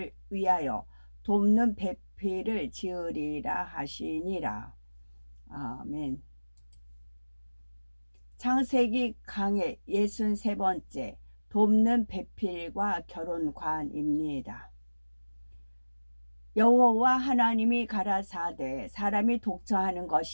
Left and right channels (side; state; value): both; inverted; correlation -1.00